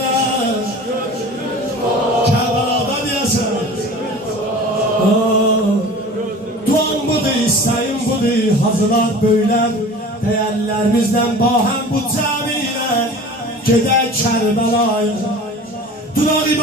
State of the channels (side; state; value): both; normal; correlation 0.40